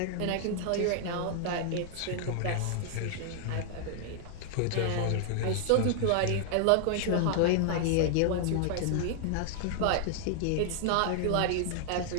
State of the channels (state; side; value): different; both; correlation 0.00